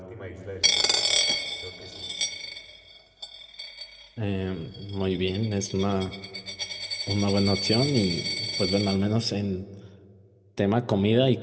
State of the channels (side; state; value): both; identical; correlation 1.00